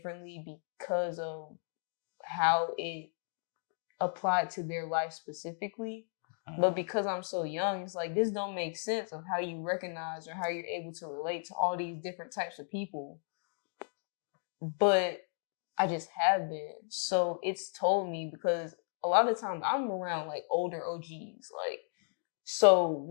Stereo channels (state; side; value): silent; right; digital silence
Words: because of how it applied to their life specifically. But because I'm so young, it's like, this don't make sense of how you recognize or how you're able to relate to all these different types of people. But I just have been. So it's told me, because a lot of times I'm around like older OGs. Like, so